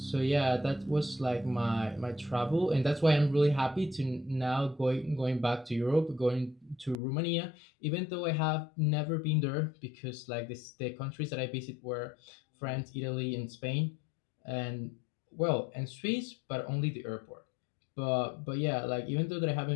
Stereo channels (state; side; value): drops out; right; at 7.0 s